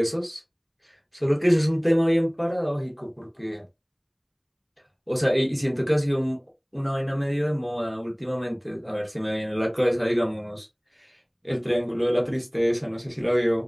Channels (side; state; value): both; identical; correlation 1.00